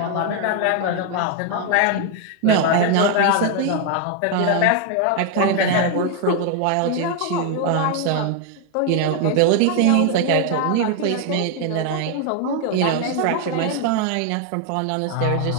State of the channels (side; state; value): both; different; correlation 0.00